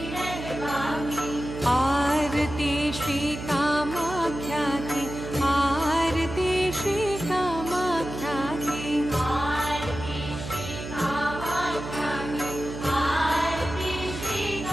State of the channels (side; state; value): right; noise; hum, 9 dB below the sound